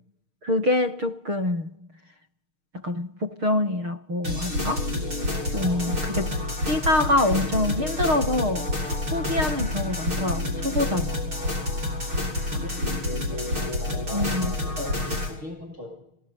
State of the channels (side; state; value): left; late; 6.5 ms